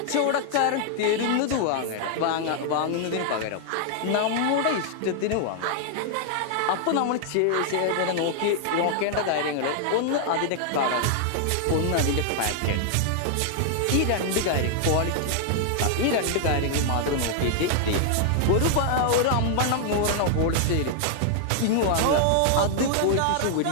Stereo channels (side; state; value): both; different; correlation 0.00